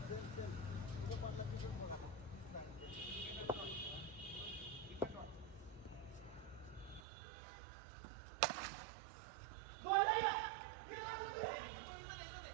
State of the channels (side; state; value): left; drops out; at 7.0 s